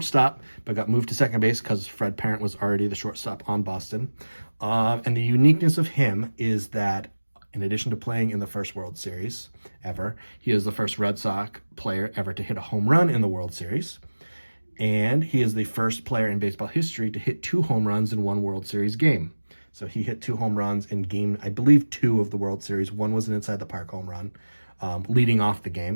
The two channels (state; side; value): inverted; both; correlation -1.00